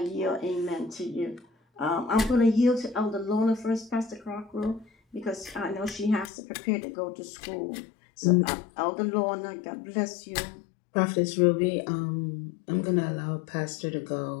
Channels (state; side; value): drops out; right; at 6.2 s